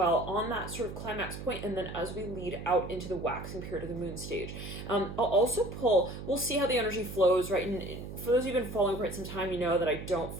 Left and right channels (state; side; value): noise; right; hum, 9 dB below the sound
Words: on that sort of climax point, and then as we lead out into the waxing period of the moon stage. I'll also pull, we'll see how the energy flows, right? And for those who've been following for quite some time, you know that I don't